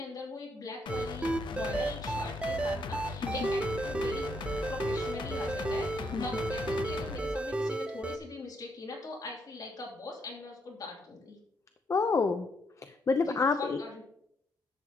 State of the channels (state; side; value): normal; both; correlation 0.75